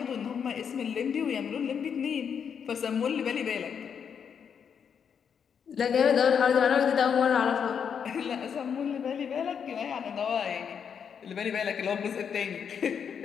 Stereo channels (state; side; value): quieter; right; 7.3 dB